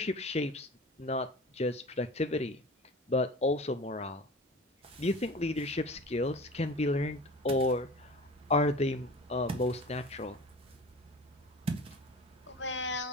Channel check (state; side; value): normal; both; correlation 0.38